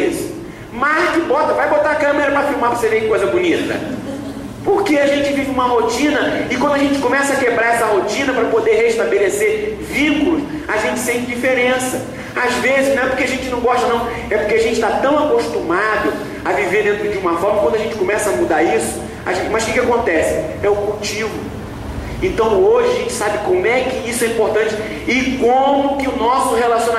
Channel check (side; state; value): both; identical; correlation 1.00